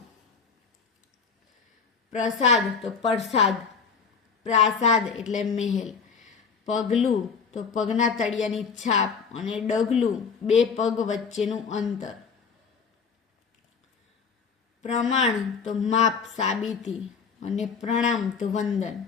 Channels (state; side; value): quieter; right; 5.7 dB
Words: પ્રસાદ તો પ્રસાદ, પ્રાસાદ એટલે મહેલ. પગલું તો પગના તળિયાની છાપ, અને ડગલું 2 પગ વચ્ચેનું અંતર. પ્રમાણ તો માપ સાબિતી, અને પ્રણામ તો વંદન.